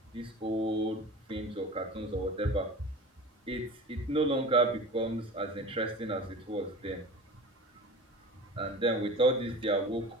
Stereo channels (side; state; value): both; normal; correlation 0.36